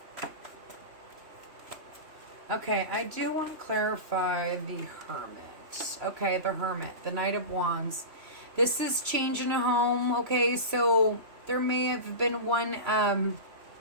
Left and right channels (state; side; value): late; left; 3.0 ms